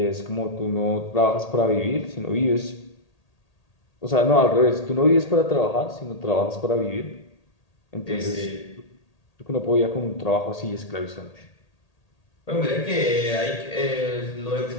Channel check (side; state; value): right; late; 1.8 ms